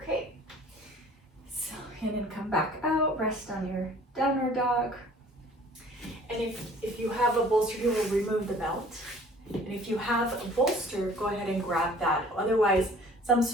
so, and then come back out, rest on your downward dog, and if you have a bolster, you will remove the belt, and if you have a bolster, go ahead and grab that, otherwise some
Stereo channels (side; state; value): both; normal; correlation 0.51